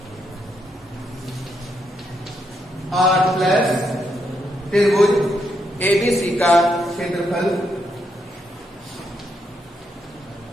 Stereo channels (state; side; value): normal; both; correlation 0.79